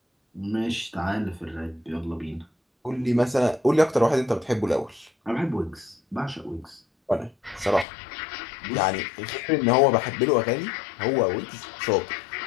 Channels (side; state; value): right; drops out; at 7.9 s